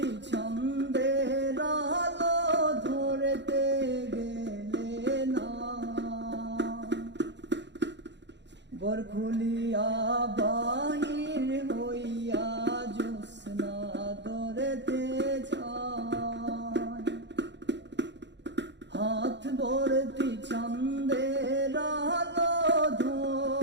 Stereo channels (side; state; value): left; late; 0.52 ms